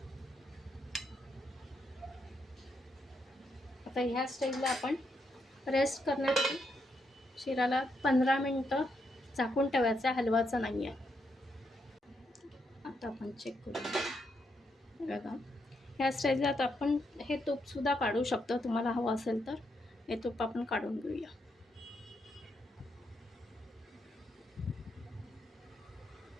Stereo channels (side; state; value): both; normal; correlation 0.80